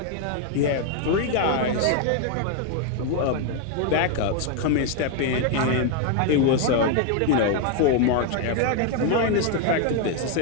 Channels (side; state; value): both; different; correlation 0.01